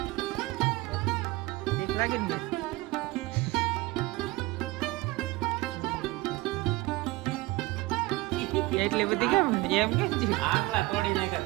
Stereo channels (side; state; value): left; quieter; 20.8 dB